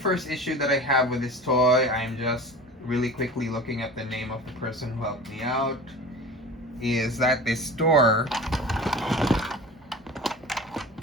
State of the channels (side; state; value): both; normal; correlation 0.36